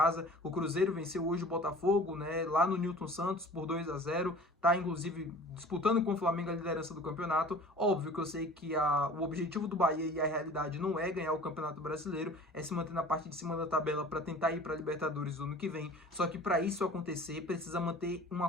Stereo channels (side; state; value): both; normal; correlation 0.44